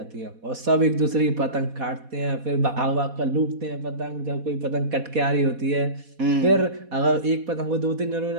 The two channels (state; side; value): late; left; 4.1 ms